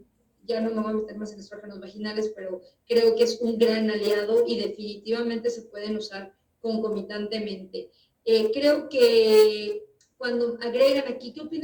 Ya no me voy a meter más en estrógenos vaginales, pero creo que es un gran aliado y definitivamente se pueden usar concomitantemente. Creo que cuando agregan aquí, ¿qué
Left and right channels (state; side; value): identical; both; correlation 1.00